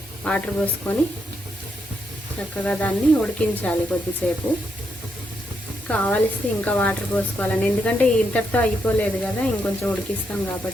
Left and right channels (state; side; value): normal; both; correlation 0.80